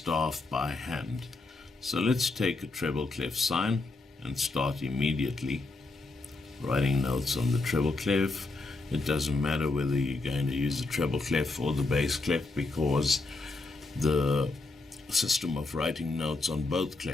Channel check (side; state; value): right; quieter; 3.3 dB